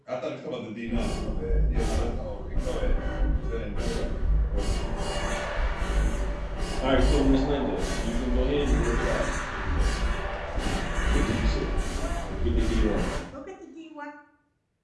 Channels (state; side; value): identical; both; correlation 1.00